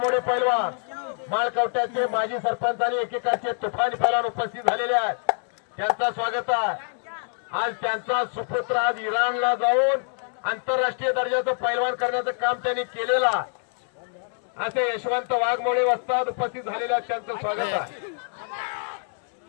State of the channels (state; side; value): silent; right; 55 dB below the other